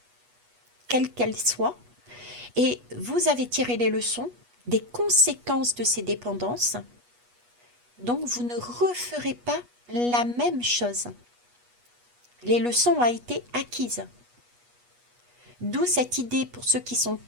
quelles qu'elles soient, et vous avez tiré les leçons des conséquences de ces dépendances. Donc, vous ne referez pas la même chose. Les leçons ont été acquises. D'où cette idée pour ceux qui sont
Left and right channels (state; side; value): late; left; 8.3 ms